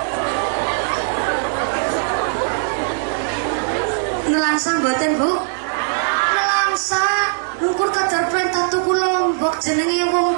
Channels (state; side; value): silent; left; 66 dB below the other